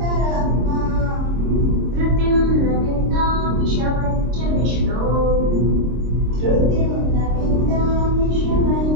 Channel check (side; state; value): left; late; 26 ms